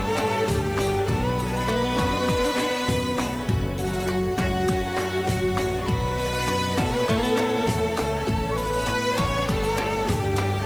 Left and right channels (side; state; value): left; noise; hiss, 24 dB below the sound